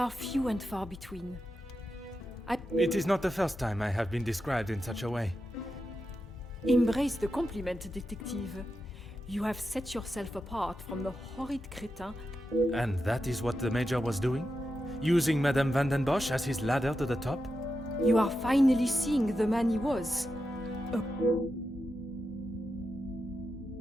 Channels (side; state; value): both; normal; correlation 0.88